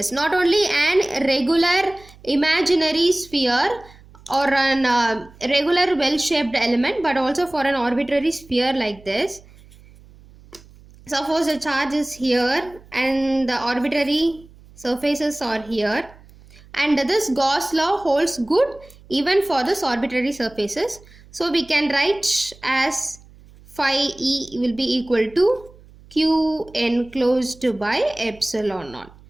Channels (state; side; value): noise; right; hum, 24 dB below the sound